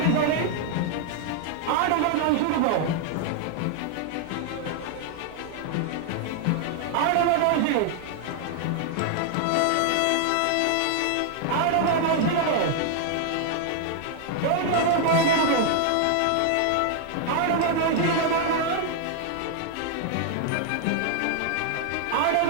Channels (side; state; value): both; different; correlation 0.00